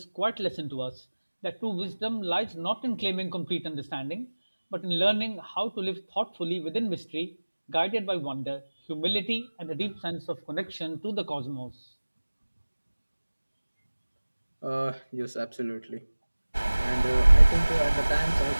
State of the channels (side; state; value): both; inverted; correlation -1.00